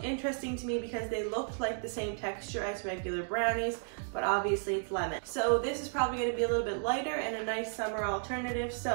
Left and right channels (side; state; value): left; silent; 55 dB below the other